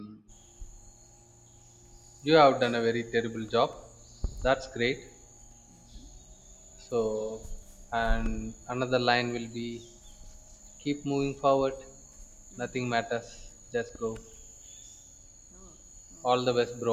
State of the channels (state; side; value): identical; both; correlation 1.00